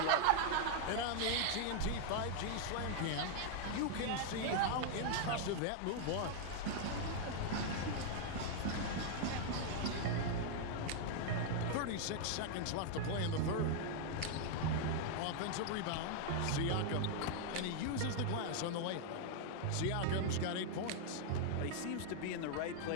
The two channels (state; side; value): different; both; correlation 0.00